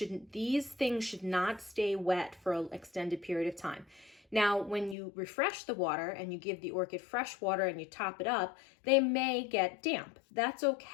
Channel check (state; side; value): drops out; right; at 5.0 s